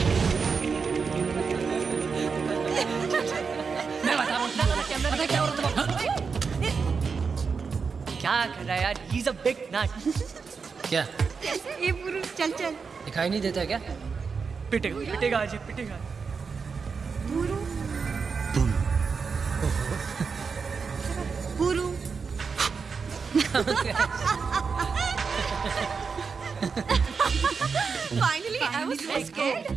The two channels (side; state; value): left; quieter; 5.4 dB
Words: क्या कर रहा है यार? He's a big nut. क्या? ये पुरुष चल चल। दिखाई नहीं देता क्या? पिटेगा, पिटेगा आज, पिटेगा। पुरु। Finally, I was so scared.